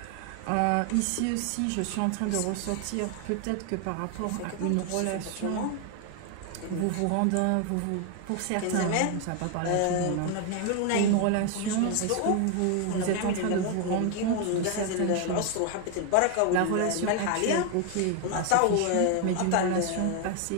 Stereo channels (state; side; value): different; both; correlation 0.01